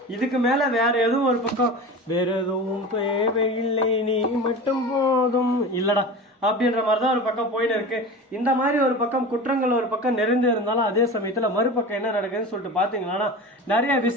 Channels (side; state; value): both; normal; correlation 0.32